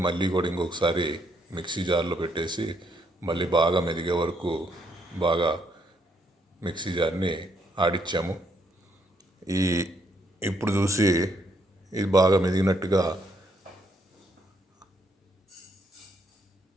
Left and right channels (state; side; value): normal; both; correlation 0.73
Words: మళ్ళీ కూడా ఇంకొకసారి మిక్సీ జార్లో పెట్టేసి మళ్ళీ బాగా మెదిగే వరకు బాగా మిక్సీ జార్ని ఆడిచ్చాము. ఇప్పుడు చూసి ఇది బాగా మెదిగినట్టుగా